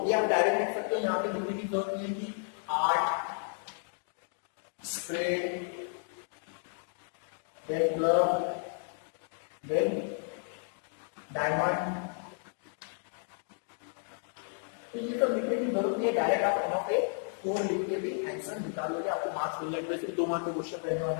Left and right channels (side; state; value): right; silent; 56 dB below the other